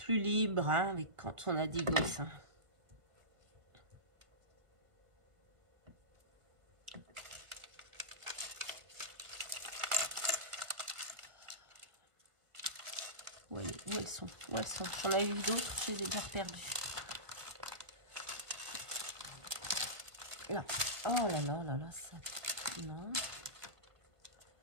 libre hein, avec quand on a des gosses. Hein. Où elles sont? Où elles sont? J'en ai eu d'autres, je les ai déjà perdues. Là. Oh là là là là, ça. Non.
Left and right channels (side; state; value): left; late; 1.5 ms